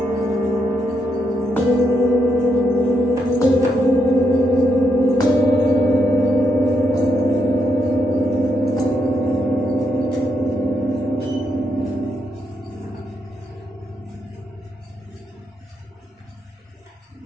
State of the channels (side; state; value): both; normal; correlation 0.80